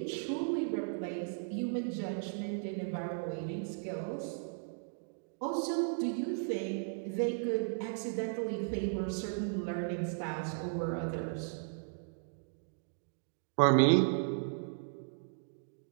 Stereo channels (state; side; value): silent; left; digital silence